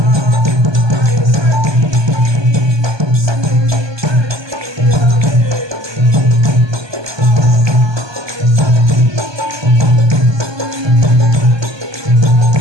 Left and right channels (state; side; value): late; left; 1.2 ms